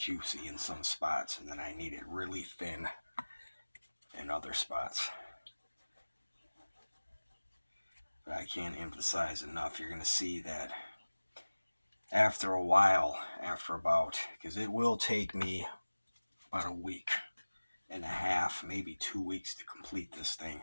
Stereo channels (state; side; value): inverted; both; correlation -1.00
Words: in some spots, and then I need it really thin in other spots. But I can't emphasize enough, you're going to see that after a while, because it will take me about a week and a half, maybe 2 weeks to complete this thing.